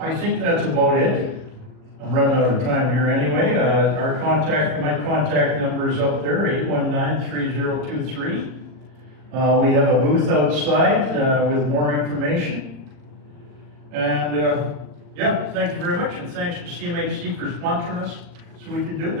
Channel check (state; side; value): late; left; 39 ms